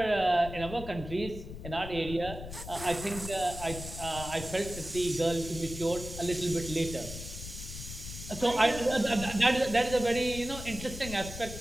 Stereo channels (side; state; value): left; noise; rumble, 10 dB below the sound